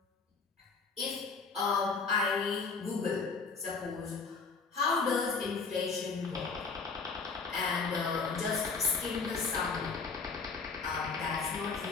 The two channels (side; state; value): right; quieter; 4.7 dB